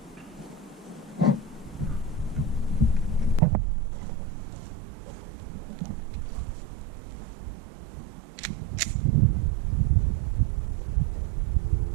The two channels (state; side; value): drops out; left; at 3.4 s